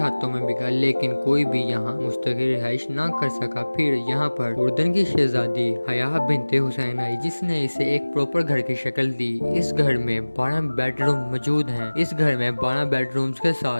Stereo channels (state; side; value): inverted; both; correlation -1.00